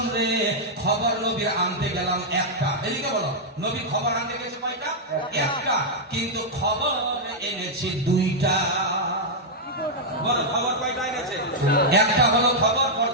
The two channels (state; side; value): normal; both; correlation -0.05